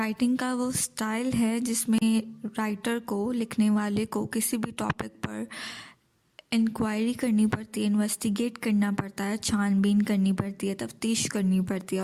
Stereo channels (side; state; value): both; identical; correlation 1.00